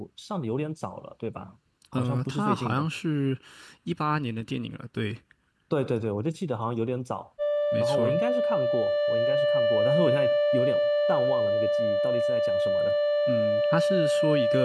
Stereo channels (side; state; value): both; identical; correlation 1.00